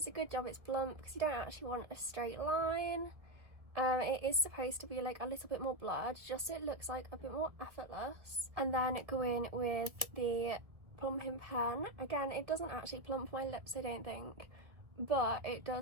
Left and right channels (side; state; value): left; late; 1.5 ms